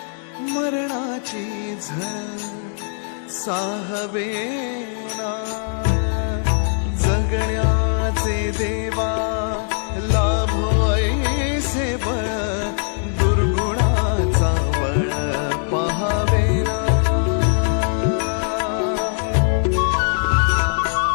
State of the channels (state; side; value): silent; right; 65 dB below the other